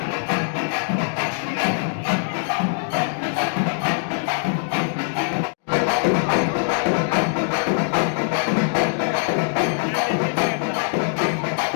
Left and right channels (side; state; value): right; silent; 64 dB below the other